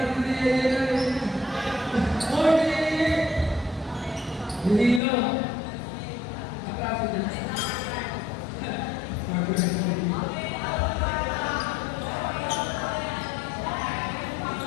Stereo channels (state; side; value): drops out; right; at 5.0 s